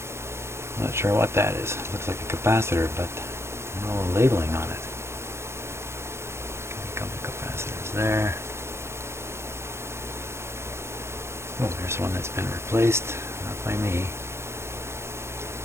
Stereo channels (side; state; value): left; late; 0.13 ms